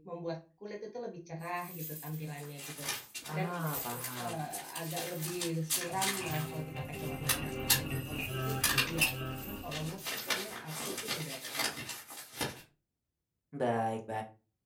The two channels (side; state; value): both; identical; correlation 1.00